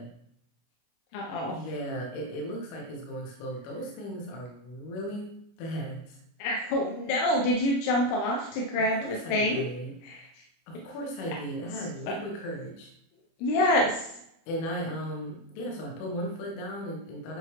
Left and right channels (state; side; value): late; right; 25 ms